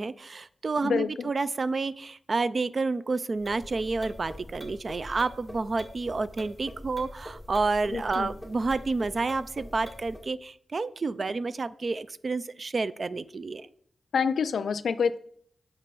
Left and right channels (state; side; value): normal; both; correlation 0.90